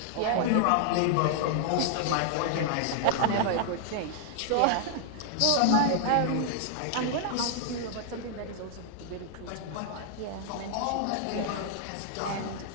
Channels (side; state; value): both; different; correlation 0.00